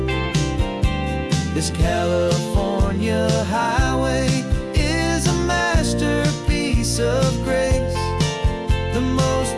This California highway is a masterpiece of grace, the most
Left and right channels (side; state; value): both; identical; correlation 1.00